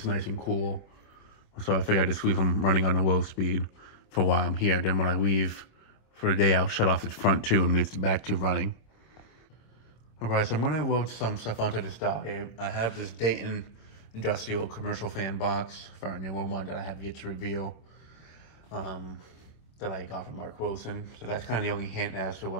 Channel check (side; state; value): right; late; 26 ms